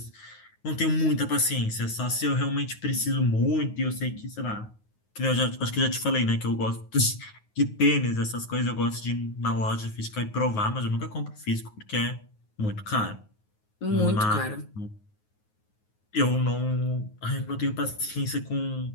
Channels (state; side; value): late; right; 9.5 ms